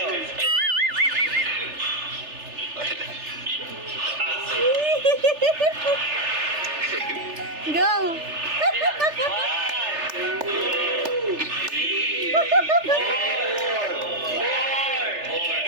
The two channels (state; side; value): late; left; 3.3 ms